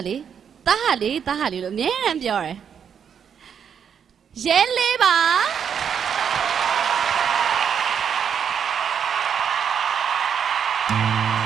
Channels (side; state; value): left; quieter; 7.7 dB